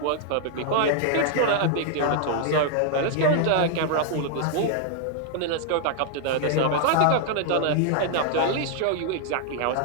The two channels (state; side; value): different; both; correlation 0.00